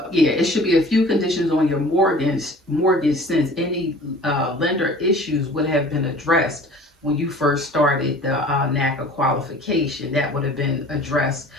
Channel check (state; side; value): normal; both; correlation 0.46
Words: yeah, it should be a few conditions on your mortgage since any lender issues would have been addressed when you first started the NACA qualification. That would have been addressed